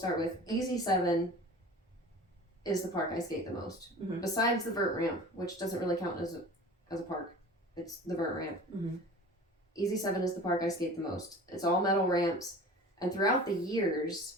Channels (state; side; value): normal; both; correlation 0.40